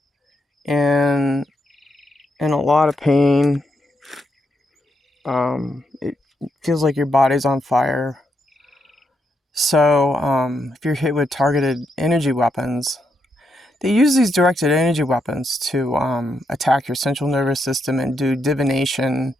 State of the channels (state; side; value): normal; both; correlation 0.80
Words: and in a lot of pain. It feels like your body's on fire. So, if you're hit with targeted energy weapons, they use these directed energy weapons to attack your central nervous system and do divination